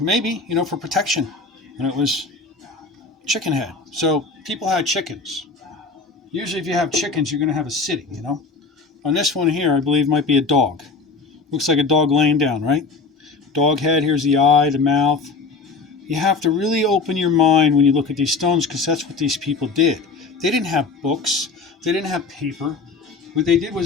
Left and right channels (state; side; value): quieter; right; 4.2 dB